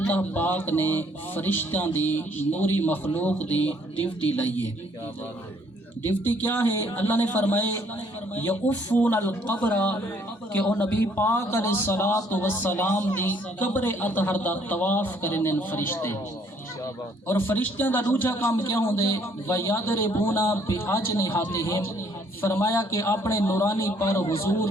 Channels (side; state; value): both; normal; correlation 0.64